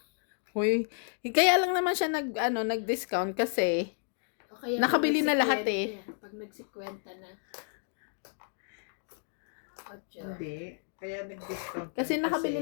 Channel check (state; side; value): silent; right; 57 dB below the other